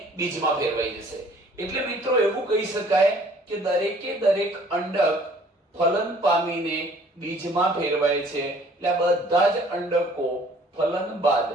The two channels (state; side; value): normal; both; correlation 0.56